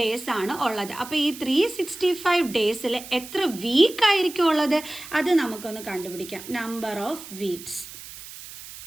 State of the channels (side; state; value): right; noise; hiss, 14 dB below the sound